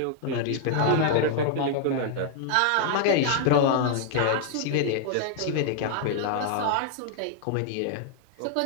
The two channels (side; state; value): both; different; correlation 0.00